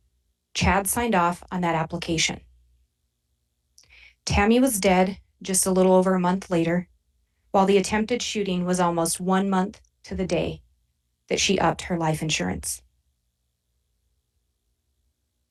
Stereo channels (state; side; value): identical; both; correlation 1.00